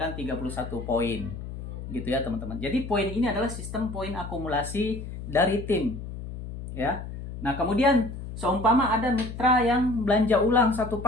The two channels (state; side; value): noise; left; hum, 9 dB below the sound